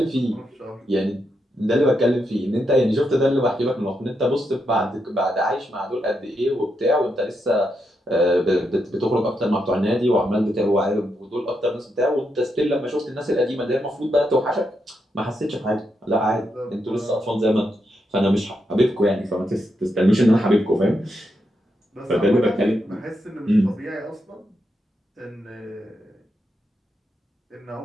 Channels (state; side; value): normal; both; correlation 0.82